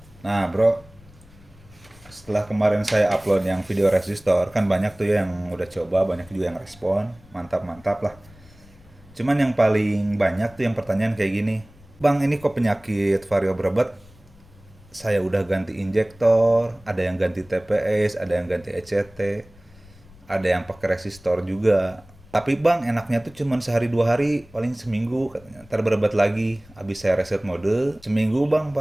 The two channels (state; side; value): noise; left; rumble, 25 dB below the sound